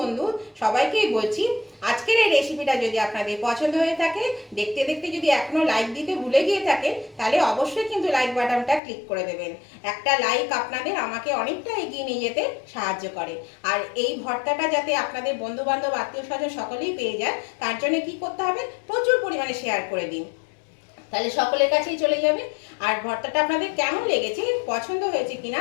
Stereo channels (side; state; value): right; drops out; at 8.8 s